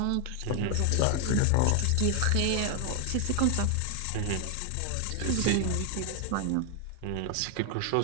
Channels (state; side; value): different; both; correlation 0.00